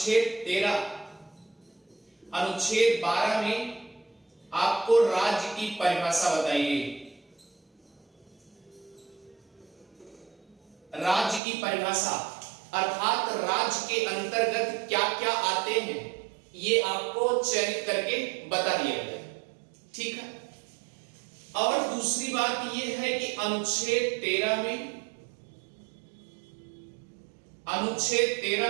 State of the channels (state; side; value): drops out; left; at 11.4 s